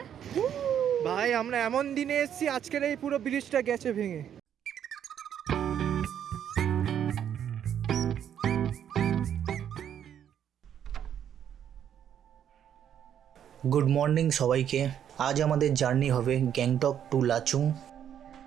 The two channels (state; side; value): quieter; left; 9.4 dB